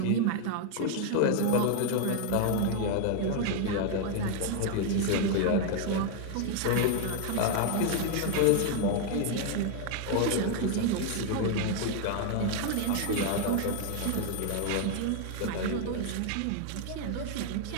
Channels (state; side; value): different; both; correlation 0.00